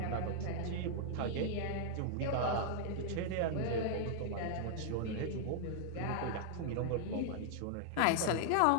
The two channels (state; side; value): different; both; correlation -0.01